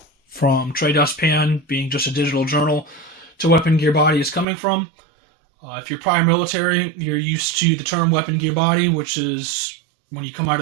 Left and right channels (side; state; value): left; drops out; at 4.5 s